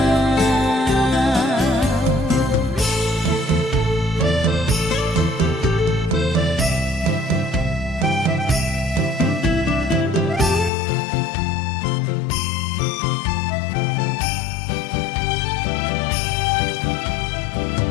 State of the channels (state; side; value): drops out; right; at 10.7 s